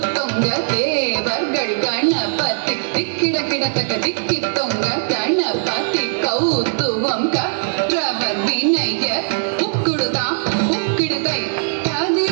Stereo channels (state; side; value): silent; left; 58 dB below the other